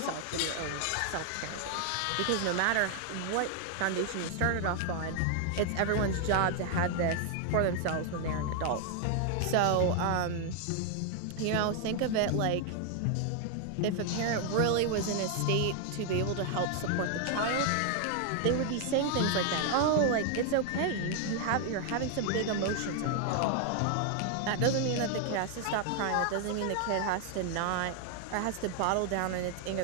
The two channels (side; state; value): both; different; correlation 0.00